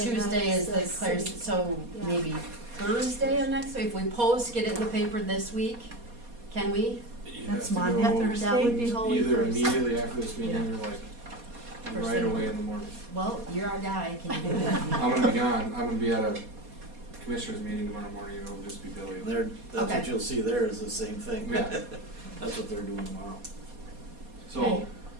night Tuesday as is the Claire's, city. so Yeah. maybe Thursday of next week? If we post, get it in the paper this week, can we? You That's have to Monday, go Thursday? That would be Holy either Thursday. immediately after this meeting Yeah. or like First right thing. away in the morning. Well, you're our guy, can you do it? I'm gonna be gone, I'm gonna be at a commissioners meeting tomorrow morning, it'll just be Billy. That's what Okay. you'll see there is the same thing. Yeah. That's what they're doing tomorrow. So, Okay.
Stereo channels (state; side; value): late; left; 4.2 ms